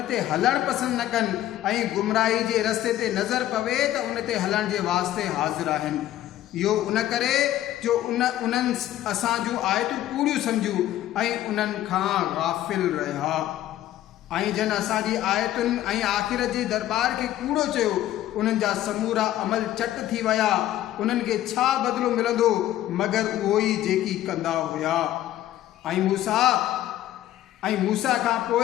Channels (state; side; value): quieter; right; 13.4 dB